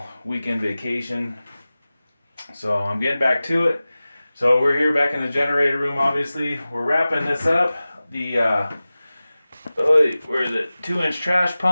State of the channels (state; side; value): inverted; both; correlation -0.97